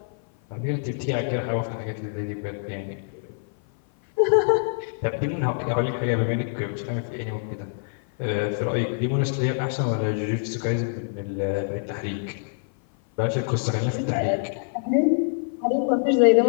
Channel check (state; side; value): silent; right; 56 dB below the other